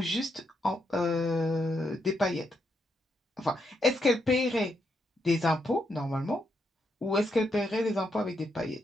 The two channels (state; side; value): normal; both; correlation 0.80